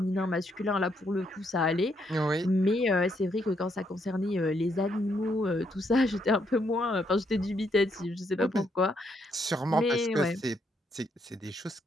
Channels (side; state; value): both; normal; correlation 0.75